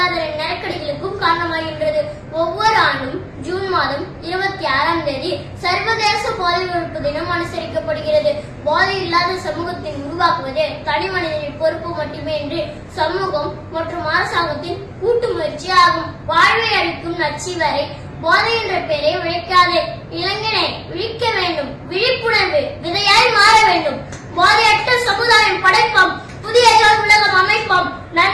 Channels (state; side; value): identical; both; correlation 1.00